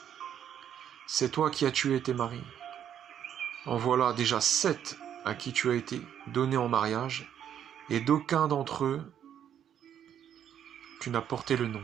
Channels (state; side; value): quieter; left; 9.5 dB